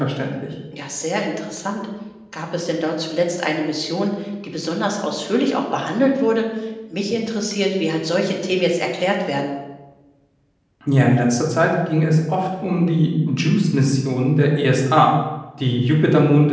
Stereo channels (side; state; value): both; identical; correlation 1.00